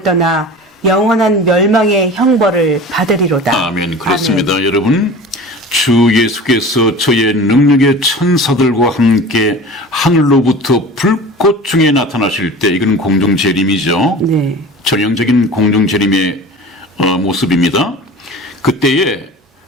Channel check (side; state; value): both; normal; correlation 0.38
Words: 떠나 영원한 멸망의 형벌을 받으리로다. 아멘. 그렇습니다. 아멘. 여러분, 주 예수께서 저의 능력의 천사들과 함께 하늘로부터 불꽃 중에 나타나실 때 이건 공중재림이죠. 네. 전형적인 공중재림의 모습입니다. 그때에